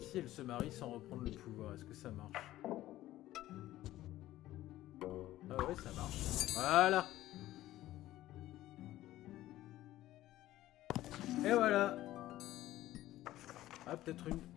elle se marie sans reprendre le pouvoir, est-ce que ça marche? Ah ouais, ça marche. Voilà. Et voilà. Ah, peut-être une...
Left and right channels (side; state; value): right; quieter; 15.0 dB